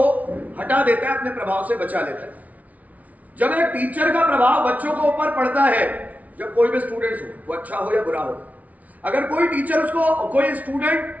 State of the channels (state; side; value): late; left; 0.071 ms